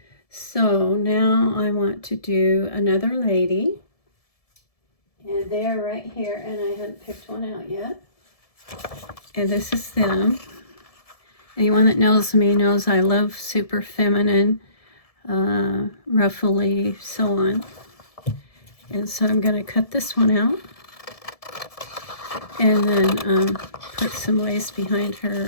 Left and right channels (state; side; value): late; right; 1.7 ms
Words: So now I want to do another lady. And they're right here, and I hadn't picked one out yet. And this is them. Anyone that knows me knows I love super feminine, ruffly, so on. And so I'm going to cut this one out. And then put some lace behind